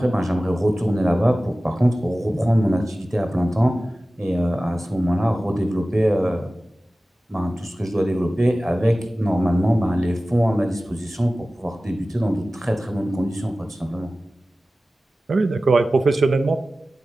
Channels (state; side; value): normal; both; correlation 0.96